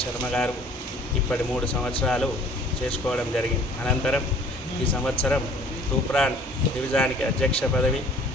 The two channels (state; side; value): normal; both; correlation 0.53